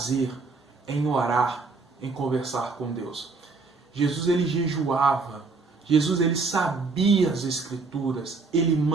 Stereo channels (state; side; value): quieter; left; 4.1 dB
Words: em orar, em conversar com Deus. Jesus, ele jejuava. Jesus, ele sabia as Escrituras, ele